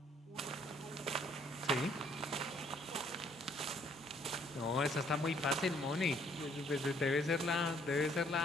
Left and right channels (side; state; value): both; normal; correlation 0.64